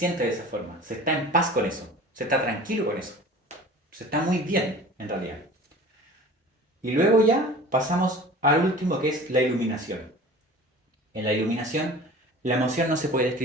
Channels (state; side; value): normal; both; correlation 0.41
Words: de esa forma, se está en paz con eso, se está tranquilo con eso, se está muy bien en realidad. Y luego ya pasamos al último que es la iluminación. En la iluminación la emoción no se puede